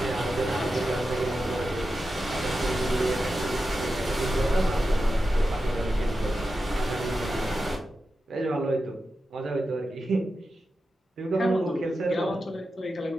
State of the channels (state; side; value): normal; both; correlation 0.90